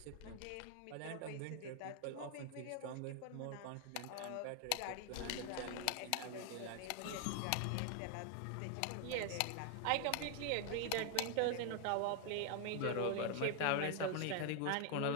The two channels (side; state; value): both; different; correlation 0.00